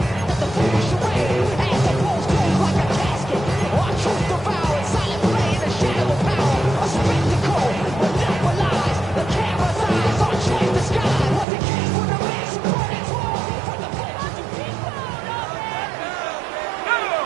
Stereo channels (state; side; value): drops out; left; at 11.5 s